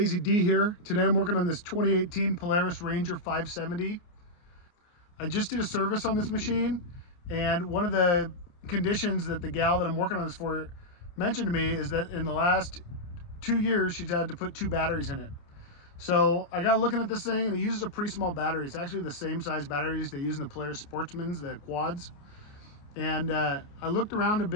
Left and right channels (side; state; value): right; late; 28 ms